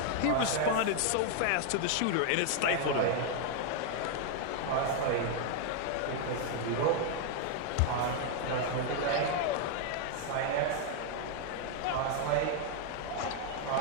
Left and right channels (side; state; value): both; different; correlation 0.00